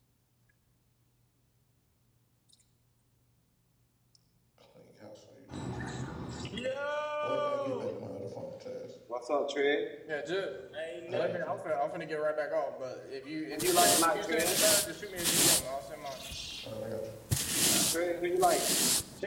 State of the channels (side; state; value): both; identical; correlation 1.00